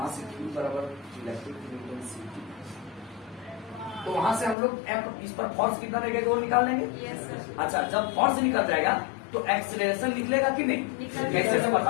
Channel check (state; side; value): drops out; right; at 4.5 s